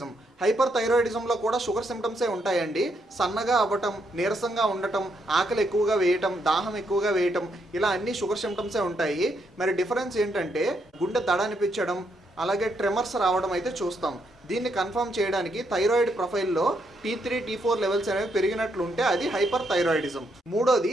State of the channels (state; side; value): normal; both; correlation 0.77